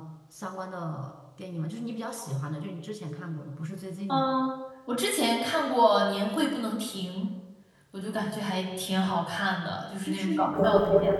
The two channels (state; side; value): identical; both; correlation 1.00